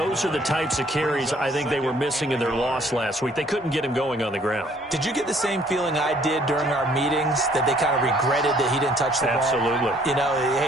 are the types of carries I think they were missing in their loss last week. They couldn't get him going on the ground. Did you get the same feeling I did during our meetings, that they kind of regretted that he didn't touch the ball? Absolutely. You know,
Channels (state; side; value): normal; both; correlation 0.61